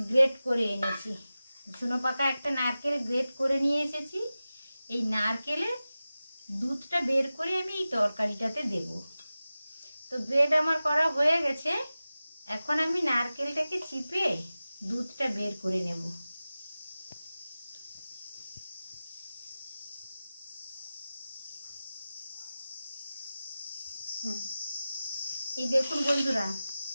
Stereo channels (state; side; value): inverted; both; correlation -0.95